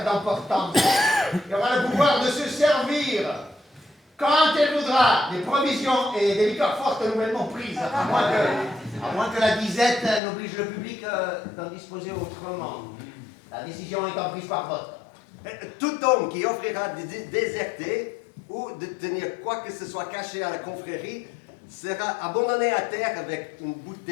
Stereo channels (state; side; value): drops out; right; at 10.2 s